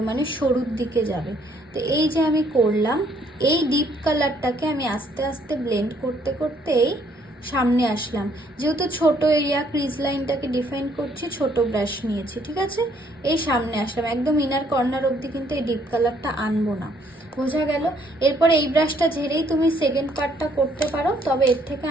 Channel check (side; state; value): both; normal; correlation 0.66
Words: মানে সরুর দিকে যাবে। তো এই যে আমি করলাম, এই ডিপ কালারটাকে আমি আস্তে আস্তে ব্লেন্ড করতে করতেই সামনে আসলাম। যেহেতু ছোট এরিয়া ক্রিজ লাইনটাকে ডিফাইন করছি, ছোট ব্রাশ নিয়েছি, ঠিক আছে। এই সামনে আসলাম, একদম ইনার কর্নার অবধি কিন্তু এই ডিপ কালারটা আনবো না, বোঝা গেল। এরপরে এই ব্রাশটা ঝেড়েই তুমি সেকেন্ড পার্টটা করতে পারো, তবে এর থেকে